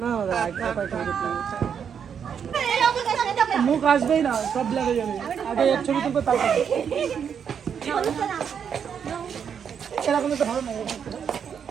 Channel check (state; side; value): quieter; left; 7.5 dB